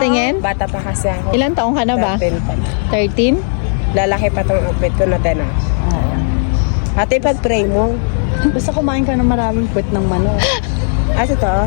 Bata pa kasi ako. Ilan taong ka na ba? 13 pa. 13? Lalaki pa tong outfit ko na tena. Oo. Ate, pag-pray mo. Basta kumain ka ng maraming puwet ng manok. Ito?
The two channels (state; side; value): silent; right; digital silence